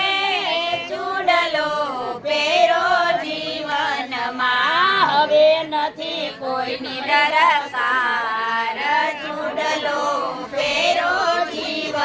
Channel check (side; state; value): both; identical; correlation 1.00